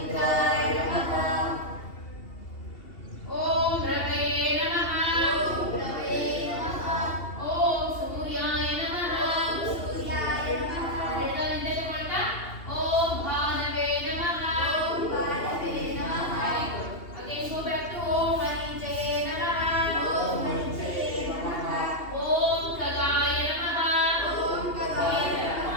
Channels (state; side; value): late; right; 2.8 ms